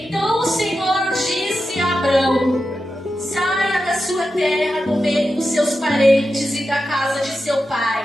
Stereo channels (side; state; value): both; normal; correlation 0.90